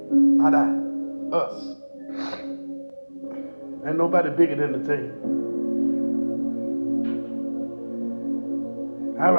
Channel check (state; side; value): inverted; both; correlation -1.00